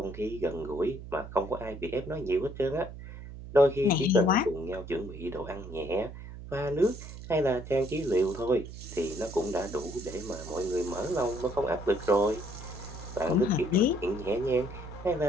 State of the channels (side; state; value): right; noise; hum, 12 dB below the sound